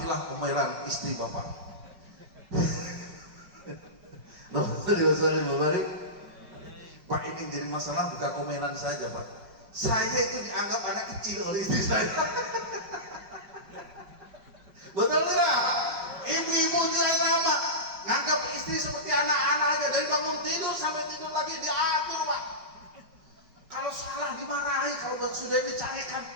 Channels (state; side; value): late; left; 5.2 ms